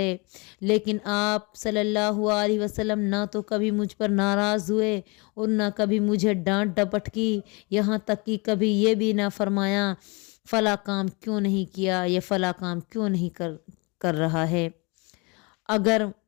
لیکن آپ صلی اللہ علیہ وسلم نہ تو کبھی مجھ پر ناراض ہوئے اور نہ کبھی مجھے ڈانٹ ڈپٹ کی، یہاں تک کہ کبھی یہ بھی نہ فرمایا فلاں کام کیوں نہیں کیا، یہ فلاں کام کیوں نہیں کر رہا ہے۔ اگر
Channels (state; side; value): quieter; right; 29.0 dB